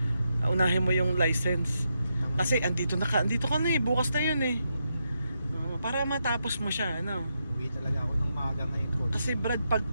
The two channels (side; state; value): both; inverted; correlation -0.83